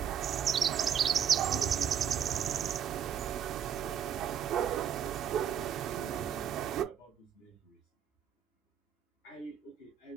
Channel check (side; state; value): left; quieter; 8.6 dB